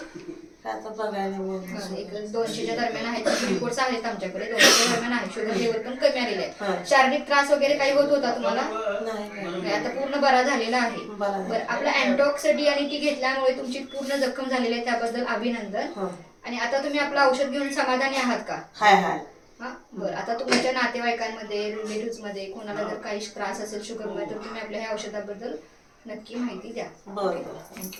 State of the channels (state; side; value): identical; both; correlation 1.00